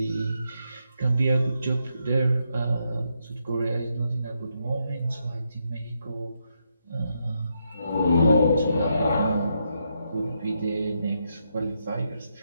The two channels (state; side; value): inverted; both; correlation -0.80